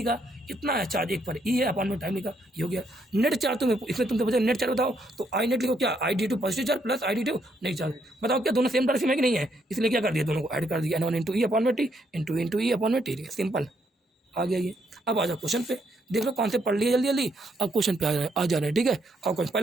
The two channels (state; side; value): normal; both; correlation 0.74